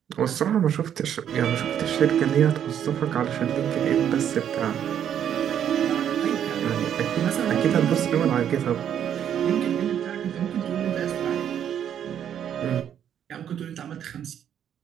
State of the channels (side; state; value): left; quieter; 9.4 dB